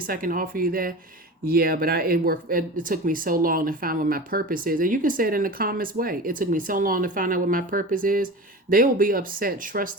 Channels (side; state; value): both; normal; correlation 0.32